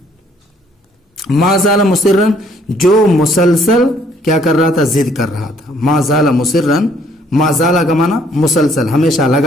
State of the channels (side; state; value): both; normal; correlation 0.63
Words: ما زال مصرن جو مسلسل کیا کر رہا تھا؟ ضد کر رہا تھا. ما زال مصرن، ما زال کا معنی مسلسل، ہمیشہ،